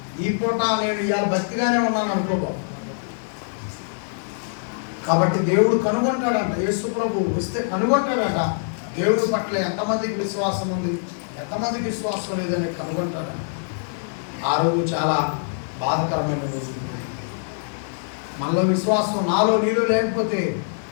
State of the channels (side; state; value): right; silent; digital silence